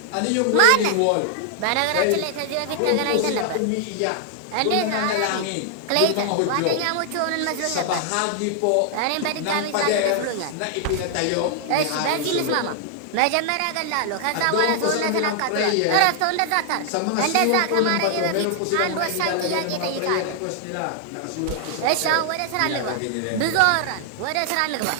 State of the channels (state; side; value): different; both; correlation 0.00